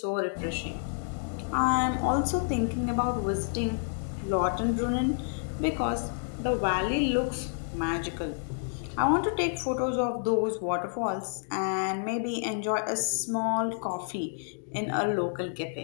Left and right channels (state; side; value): silent; right; digital silence